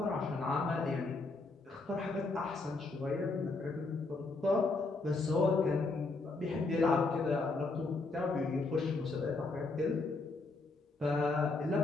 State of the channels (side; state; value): right; quieter; 3.6 dB